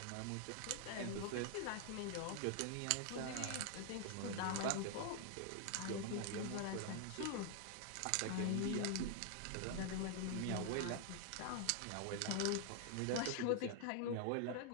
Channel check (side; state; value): both; different; correlation 0.00